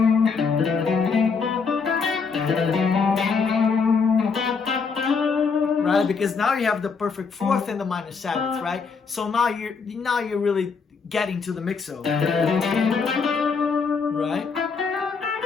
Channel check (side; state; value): right; quieter; 5.3 dB